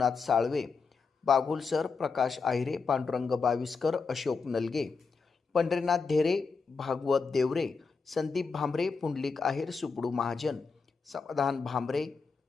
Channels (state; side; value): quieter; right; 4.9 dB